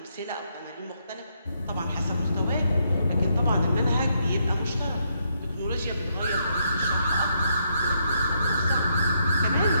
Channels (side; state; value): both; inverted; correlation -0.77